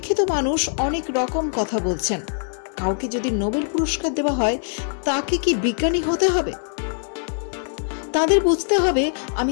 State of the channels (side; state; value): right; silent; 63 dB below the other